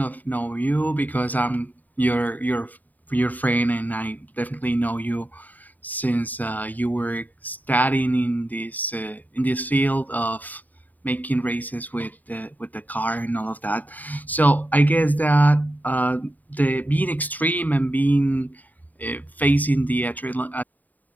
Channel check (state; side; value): late; right; 0.082 ms